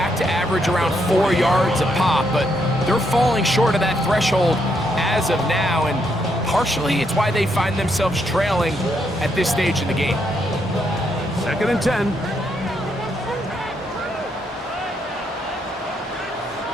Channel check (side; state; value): both; normal; correlation 0.77